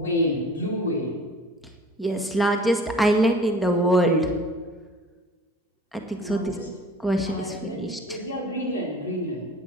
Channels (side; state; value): both; normal; correlation 0.46